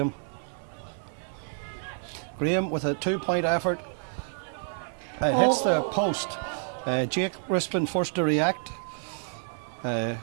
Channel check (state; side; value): silent; left; 59 dB below the other